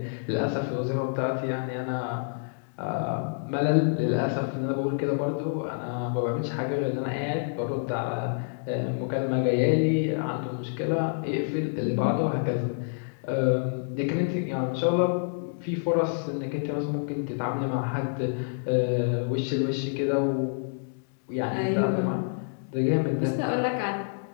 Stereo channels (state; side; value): silent; right; digital silence